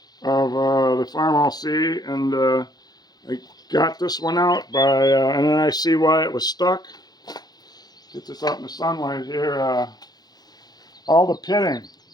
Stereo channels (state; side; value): late; right; 0.19 ms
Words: Farmall C, and I got this one out by, and then I see why it was stuck. Get this out in the sunlight here. All the pitting